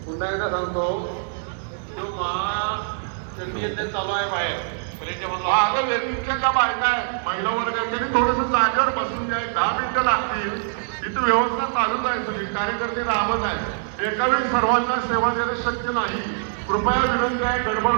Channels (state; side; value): silent; left; digital silence